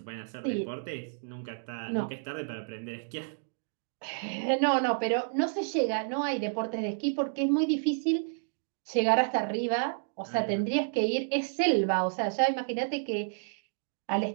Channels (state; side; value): silent; left; digital silence